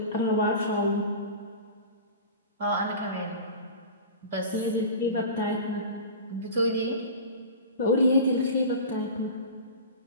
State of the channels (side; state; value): both; inverted; correlation -0.34